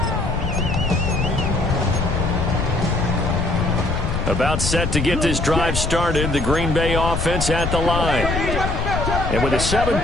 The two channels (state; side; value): noise; left; rumble, 2 dB below the sound